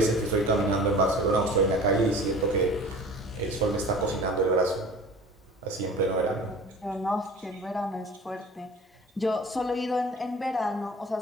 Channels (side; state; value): both; normal; correlation 0.42